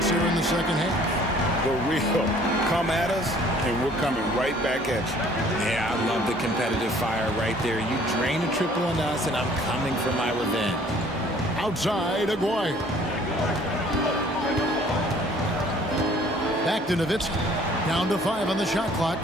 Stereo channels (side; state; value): both; normal; correlation 0.56